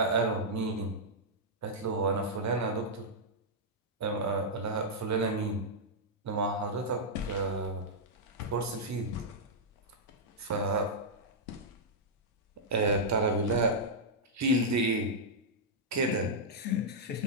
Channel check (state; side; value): normal; both; correlation -0.08